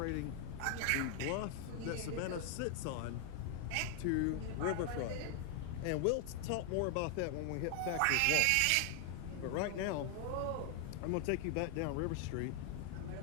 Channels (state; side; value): different; both; correlation 0.00